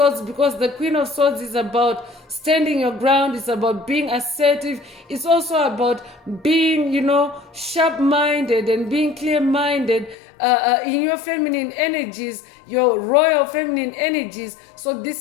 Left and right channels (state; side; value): drops out; right; at 10.2 s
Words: because the Queen of Swords is about standing your ground. It's about being assertive. It's also about being, sharp-minded and being clear-minded in your feminine energies, your royal feminine energies. So